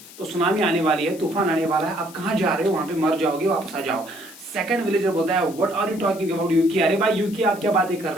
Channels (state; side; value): noise; left; hiss, 19 dB below the sound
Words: तो सुनामी आने वाली है, तूफान आने वाला है. आप कहाँ जा रहे हो? वहां पे मर जाओगे, वापस आ जाओ. सेकंड विलेजर बोलता है what are you talking about Yuki. अरे भाई यूकी आप क्या बातें कर